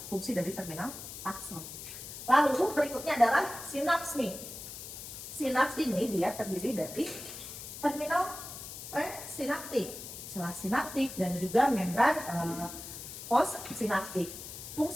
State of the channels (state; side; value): noise; left; hiss, 10 dB below the sound